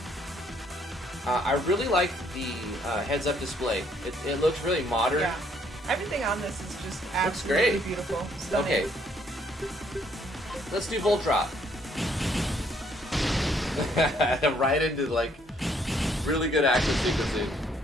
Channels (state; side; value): normal; both; correlation 0.67